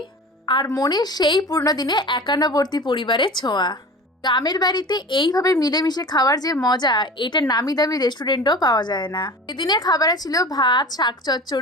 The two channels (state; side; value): normal; both; correlation 0.36